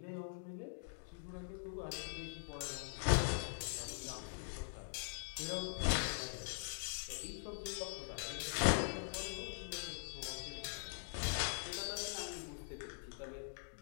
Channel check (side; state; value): right; silent; digital silence